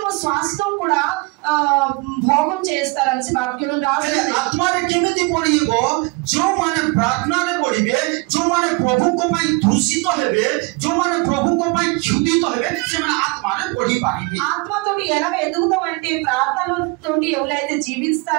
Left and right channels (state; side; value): quieter; left; 26.9 dB